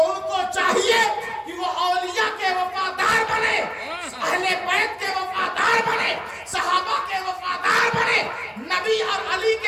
ان کو چاہیے کہ وہ اولیاء کے وفادار بنے، اہل بیت کے وفادار بنے، صحابہ کے وفادار بنے، نبی اور علی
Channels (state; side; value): identical; both; correlation 1.00